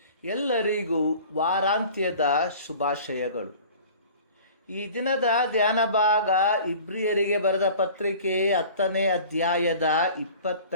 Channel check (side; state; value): both; inverted; correlation -0.45